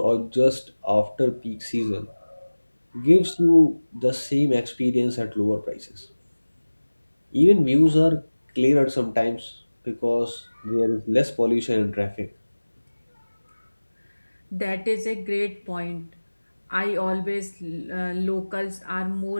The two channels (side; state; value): both; inverted; correlation -1.00